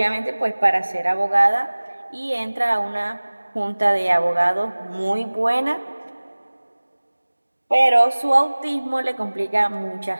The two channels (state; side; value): inverted; both; correlation -1.00